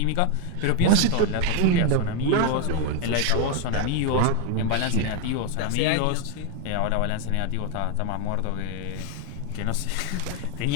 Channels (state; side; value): different; both; correlation 0.01